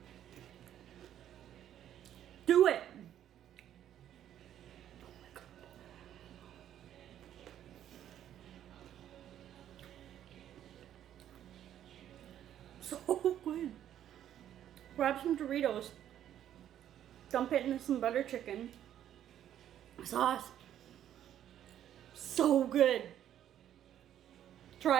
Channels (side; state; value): left; quieter; 10.9 dB